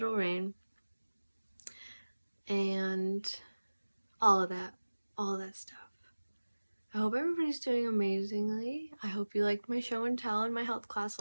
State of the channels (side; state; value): both; inverted; correlation -1.00